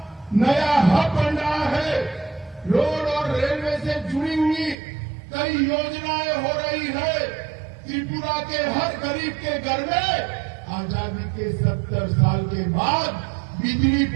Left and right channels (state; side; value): drops out; left; at 4.8 s